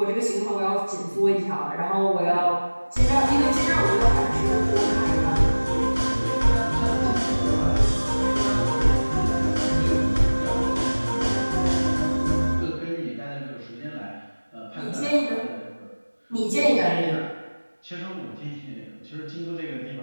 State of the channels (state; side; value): inverted; both; correlation -1.00